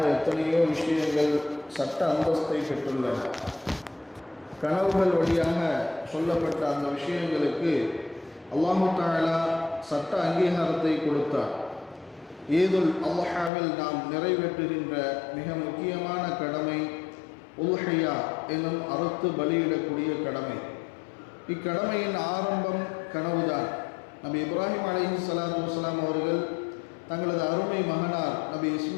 எத்தனையோ விஷயங்கள் சட்ட அந்தஸ்தை பெற்றுள்ளன. கனவுகள் வழியாக சொல்லப்பட்ட அந்த விஷயங்களுக்கு அல்லாஹு தஆலா சட்ட அங்கீகாரத்தை கொடுத்தார். ஈதுல் அல்ஹாவில் நாம் நிறைவேற்றுகின்ற மிக முக்கியமான கடமை உல்ஹியா எனும் அறுத்து பலியிடக்கூடிய கடமை. இக்கடமையின் ஆரம்பம் கனவுதான். நபி இப்ராஹிம் அலைஹிஸ்ஸலாத்து வஸ்ஸலாம் அவர்கள் தங்களது அருமை மகனார் நபி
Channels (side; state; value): right; drops out; at 13.5 s